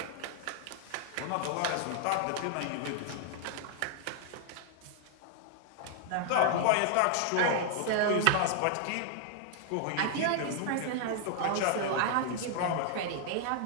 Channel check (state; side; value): different; both; correlation -0.01